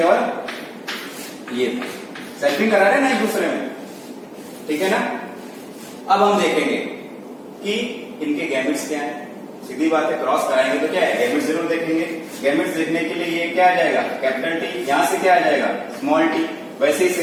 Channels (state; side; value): identical; both; correlation 1.00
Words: और ये थे, सेल्फिंग करा रहे ना एक दूसरे में, ठीक है ना। अब हम देखेंगे कि इनके गैमेट्स क्या है। सीधी बात है, क्रॉस कराएंगे तो क्या है, गैमेट्स जरूर देखेंगे। गैमेट्स देखने के लिए ये क्या आ जाएगा, कैपिटल टी, यहां से क्या आ जाएगा, स्मॉल टी। वैसे ही